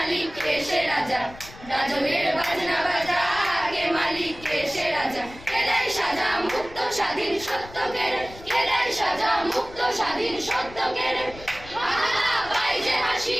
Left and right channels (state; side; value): noise; left; rumble, 18 dB below the sound